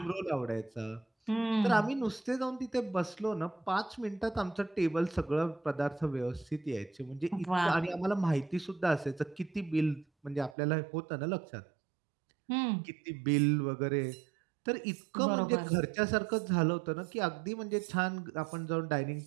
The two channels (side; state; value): left; drops out; at 10.6 s